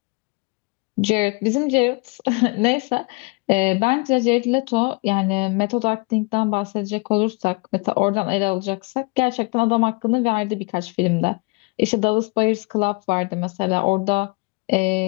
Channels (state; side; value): quieter; right; 28.5 dB